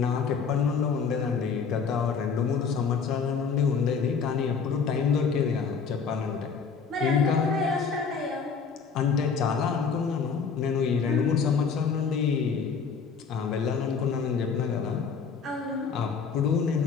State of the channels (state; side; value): quieter; right; 5.8 dB